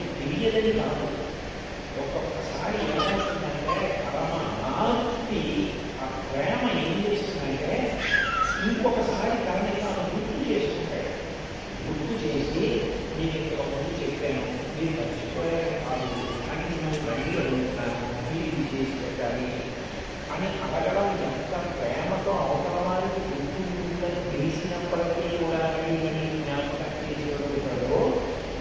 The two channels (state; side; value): identical; both; correlation 1.00